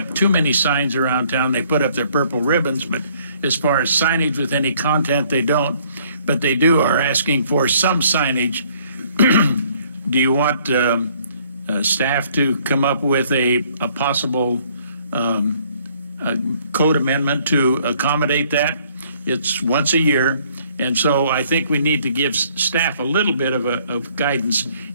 too many signs around town. They put up their purple ribbons, but as far as signage with any content, they don't. But they are asking for some signage. Do you want staff to come up with a possible code amendment to accommodate that? It's once a year, and so I think we need to give staff a little bit of guidance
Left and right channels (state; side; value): inverted; both; correlation -0.62